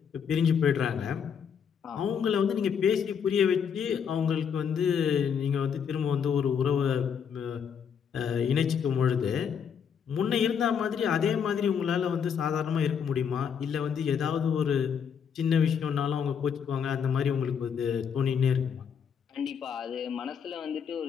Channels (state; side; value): quieter; right; 7.3 dB